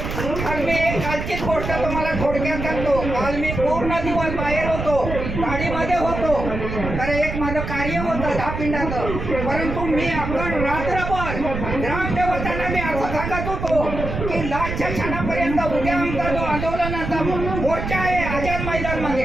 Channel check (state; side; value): noise; right; rumble, 5 dB below the sound